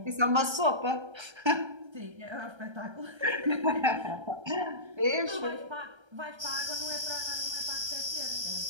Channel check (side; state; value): left; late; 1.3 ms